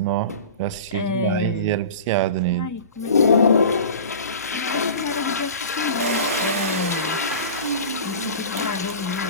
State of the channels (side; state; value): both; inverted; correlation -0.35